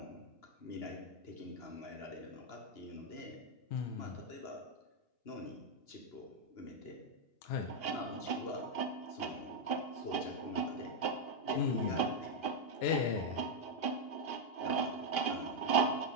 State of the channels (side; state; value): right; late; 2.8 ms